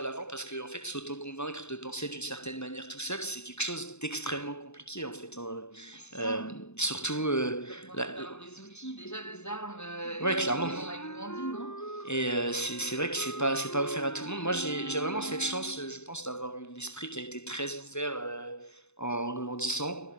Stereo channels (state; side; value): late; right; 0.81 ms